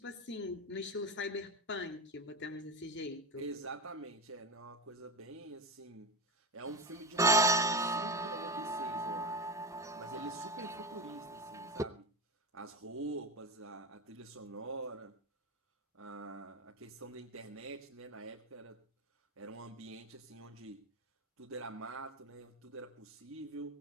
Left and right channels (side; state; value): both; normal; correlation 0.21